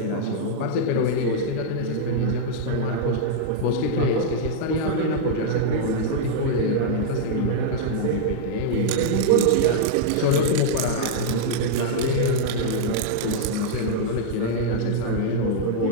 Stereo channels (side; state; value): both; different; correlation -0.02